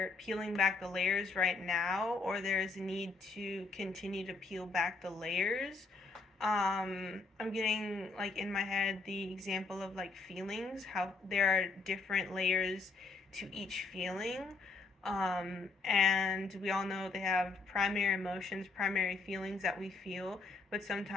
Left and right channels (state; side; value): quieter; right; 4.0 dB